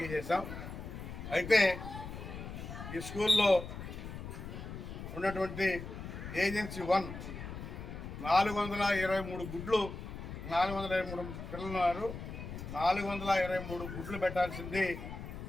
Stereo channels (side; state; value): left; noise; rumble, 9 dB below the sound